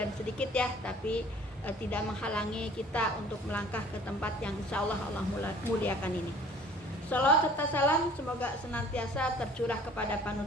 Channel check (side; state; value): both; normal; correlation 0.51